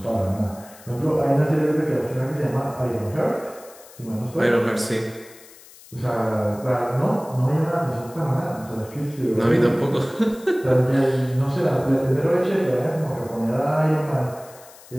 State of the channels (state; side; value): noise; left; hiss, 22 dB below the sound